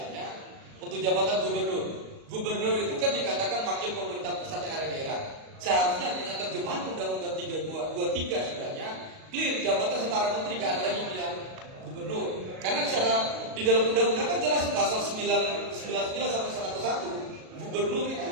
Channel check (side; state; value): left; late; 37 ms